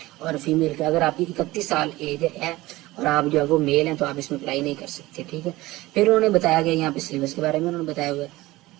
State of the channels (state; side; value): quieter; left; 18.8 dB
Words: اور فیمیل کے اگر آپ کی 31 سال ایج ہے اور آپ جو ہے وہ میل ہیں تو آپ اس میں اپلائی نہیں کر سکتے، ٹھیک ہے۔ پھر انہوں نے بتایا گیا یہاں پہ سلیبس کے بارے میں انہوں نے بتایا ہوا ہے۔